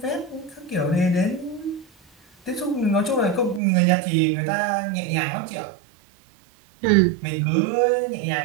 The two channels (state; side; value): drops out; left; at 3.6 s